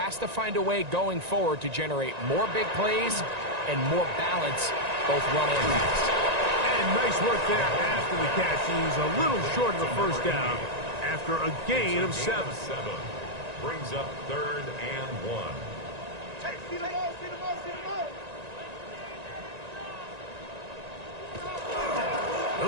to find a way going forward to generate more big plays and more balance, both run and pass. And nice work there after the catch. He's a little short of the first down after a gain of 7. Brings up 3rd and 1.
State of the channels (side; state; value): left; late; 1.9 ms